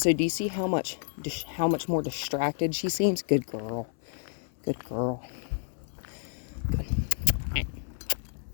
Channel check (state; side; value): silent; right; 58 dB below the other